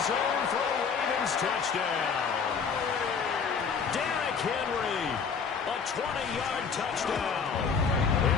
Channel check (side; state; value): right; quieter; 6.0 dB